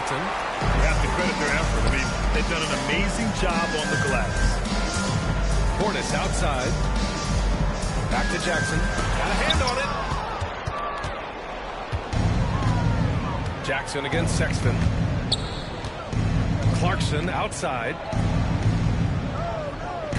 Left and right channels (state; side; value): identical; both; correlation 1.00